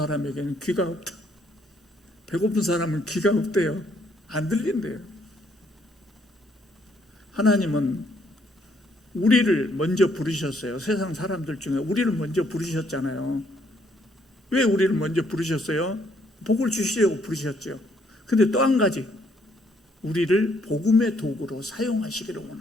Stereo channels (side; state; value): both; normal; correlation 0.69